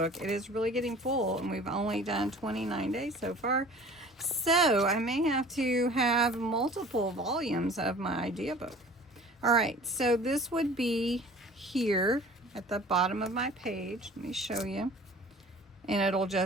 It is really getting full, and we've only done 29 days so far. So I may have to have multiple volumes of my idea book. All right, so this would be here at the bottom of my page. Let me show you. And it'll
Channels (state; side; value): normal; both; correlation 0.46